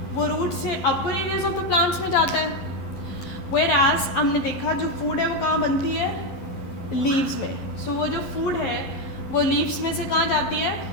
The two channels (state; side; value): late; right; 11 ms